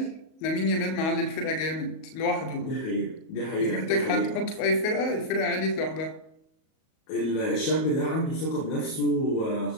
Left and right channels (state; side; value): late; right; 38 ms